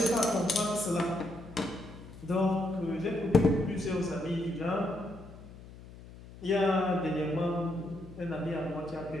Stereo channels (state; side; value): noise; left; hum, 17 dB below the sound